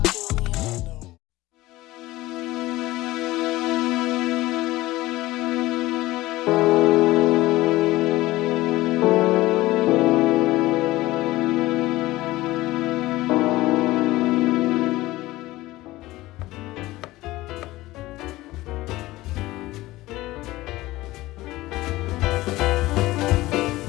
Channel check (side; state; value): right; quieter; 18.1 dB